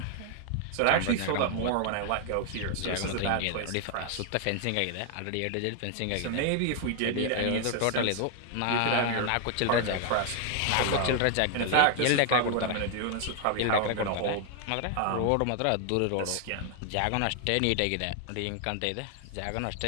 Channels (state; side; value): different; both; correlation 0.00